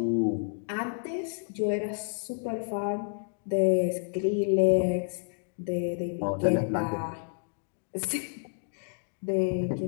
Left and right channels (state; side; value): silent; right; digital silence